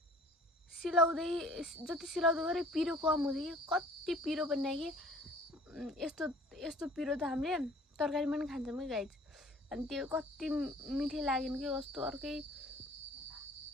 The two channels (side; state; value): both; normal; correlation 0.51